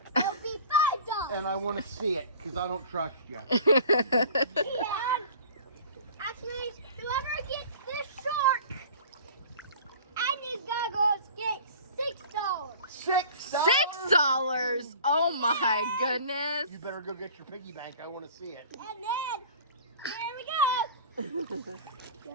It'll be $5. And I want to see it because I don't trust you. And actually, whoever gets this shark and these goggles gets $6. $6? Oh my goodness. You better go get your piggy bank. I want to see it. And then, here we go.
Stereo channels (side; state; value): both; inverted; correlation -0.43